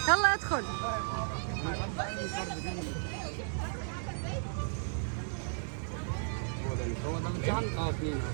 يلا ادخل. هو ده الامتحان؟ 2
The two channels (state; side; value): silent; left; 55 dB below the other